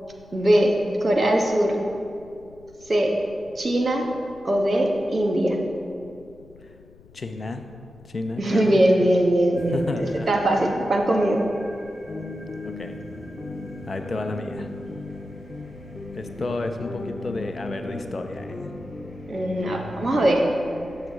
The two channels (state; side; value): noise; left; rumble, 25 dB below the sound